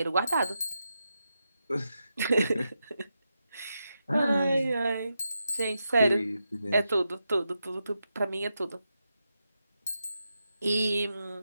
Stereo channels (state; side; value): inverted; both; correlation -0.87